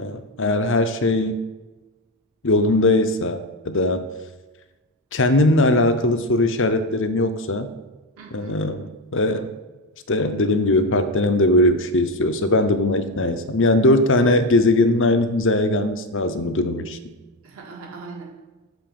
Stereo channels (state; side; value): normal; both; correlation 0.14